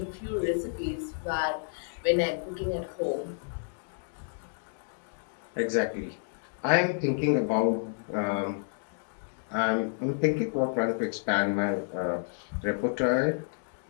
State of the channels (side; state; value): right; silent; digital silence